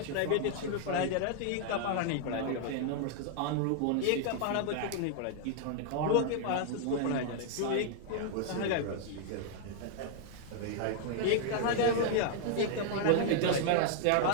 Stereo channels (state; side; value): different; both; correlation 0.00